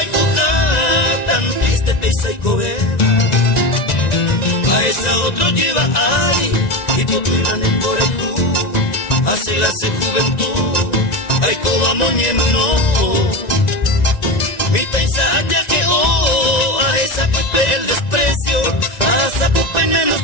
y coja, tan triste pesa y cobera. A esa otro lleva ay, y potuilan en Borejú, hace la se juventud, ay coba moñemno. Mi taisa ya que a esa pupe el desprecio, a esa pupe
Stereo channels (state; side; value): late; right; 1.9 ms